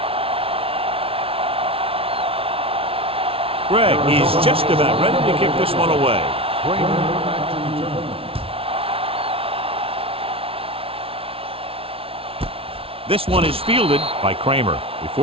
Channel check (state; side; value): late; left; 0.27 ms